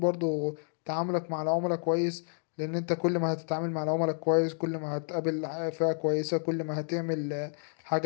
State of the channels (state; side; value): silent; right; 58 dB below the other